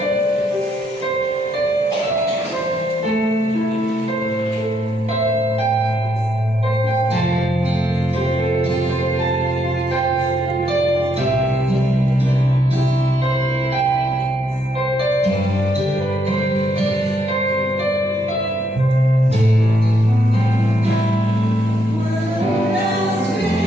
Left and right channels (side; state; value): both; normal; correlation 0.75